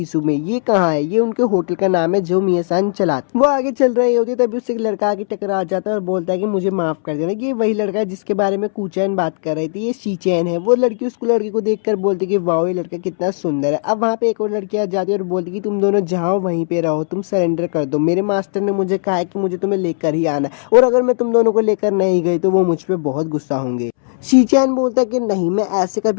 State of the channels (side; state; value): right; silent; 68 dB below the other